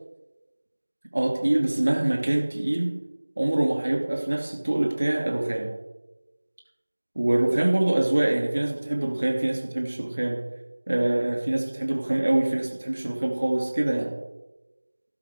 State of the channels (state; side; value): inverted; both; correlation -1.00